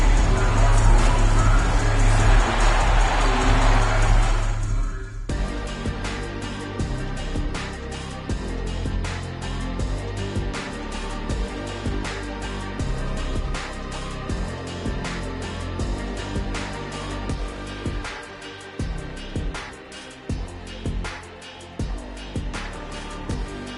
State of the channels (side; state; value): both; identical; correlation 1.00